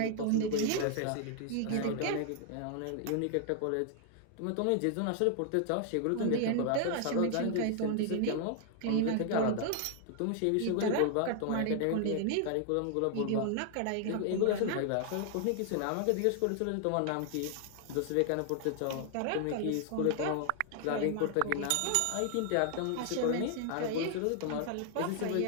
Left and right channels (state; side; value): different; both; correlation 0.00